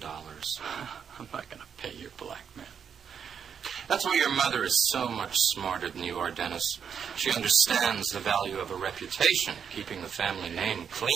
I'm not going to pay your blackmail. That's why your mother is so much smarter than you are, Dennis. She understands the value of a reputation, keeping the family name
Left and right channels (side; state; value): left; quieter; 7.3 dB